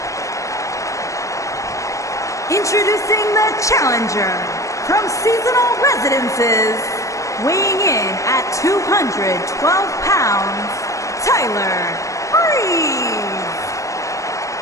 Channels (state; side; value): late; right; 0.15 ms